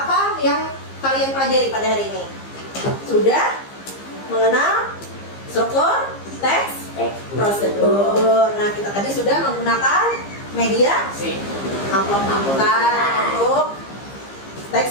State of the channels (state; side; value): late; right; 15 ms